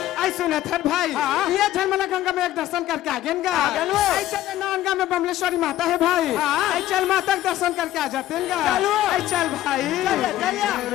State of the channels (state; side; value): quieter; right; 13.5 dB